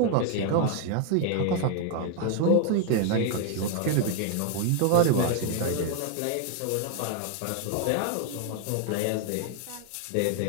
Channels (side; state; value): both; different; correlation 0.00